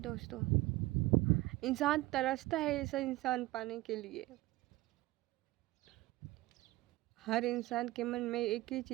दोस्तों, इंसान तरसता है ऐसा इंसान पाने के लिए। हर इंसान के मन में एक ही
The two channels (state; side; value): quieter; left; 18.7 dB